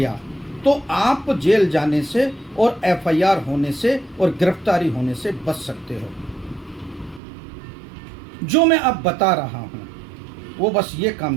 तो आप जेल जाने से और एफआईआर होने से और गिरफ्तारी होने से बच सकते हो। जो मैं अब बता रहा हूं वो बस ये काम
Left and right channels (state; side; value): drops out; left; at 7.2 s